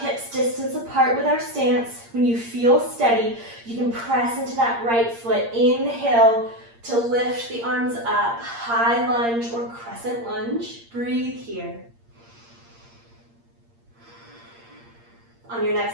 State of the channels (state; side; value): late; left; 8.6 ms